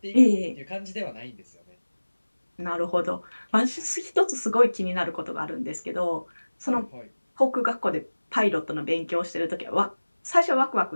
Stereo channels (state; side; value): inverted; both; correlation -1.00